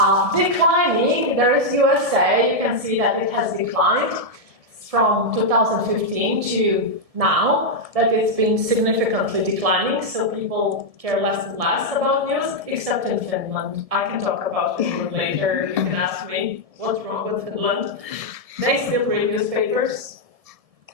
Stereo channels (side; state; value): left; late; 1.7 ms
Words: declining. There is USA. You can see that it has declined from 2015 to now, that it's been significantly declining, so people care less and less about news, except in Finland. I can talk about Finland later. You can ask me what's wrong with Finland. They still read newspapers,